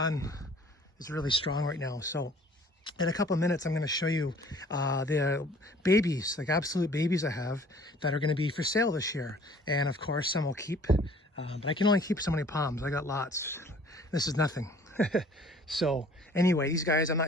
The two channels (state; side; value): normal; both; correlation 0.53